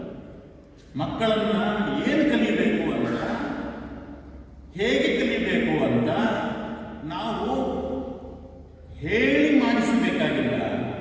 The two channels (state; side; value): identical; both; correlation 1.00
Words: ಮಕ್ಕಳನ್ನ ಏನು ಕಲಿಯಬೇಕು ಅಂತ, ಹೇಗೆ ಕಲಿಯಬೇಕು ಅಂತ ನಾವು ಹೇಳಿ ಮಾಡಿಸಬೇಕಾಗಿಲ್ಲ.